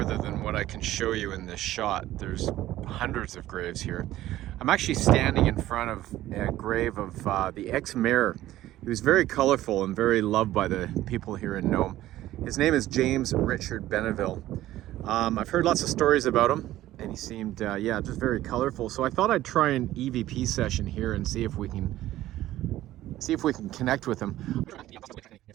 than what I can show you in this shot. There's hundreds of graves here. I'm actually standing in front of a grave of the ex-mayor. He was very colorful and very loved by the people here in Nome. His name is James Richard Benneville. I've heard lots of stories about him, and he seemed, yeah, just very colorful. So I thought I'd try an EVP session here and see if we can connect with him.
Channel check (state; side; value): quieter; left; 14.7 dB